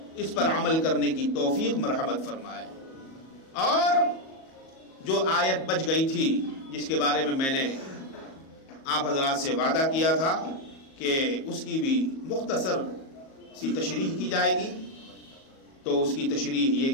اس پر عمل کرنے کی توفیق مرحمت فرمائے۔ اور جو آیت بچ گئی تھی جس کے بارے میں نے آپ حضرات سے وعدہ کیا تھا کہ اس کی بھی مختصر سی تشریح کی جائے گی، تو اس کی تشریح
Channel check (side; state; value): right; late; 37 ms